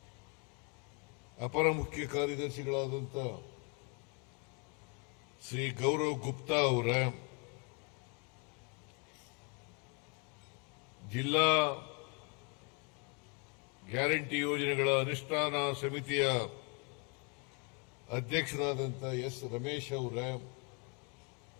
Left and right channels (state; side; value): quieter; right; 32.5 dB